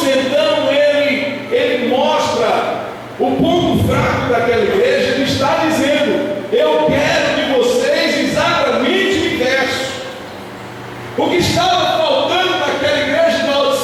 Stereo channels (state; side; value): identical; both; correlation 1.00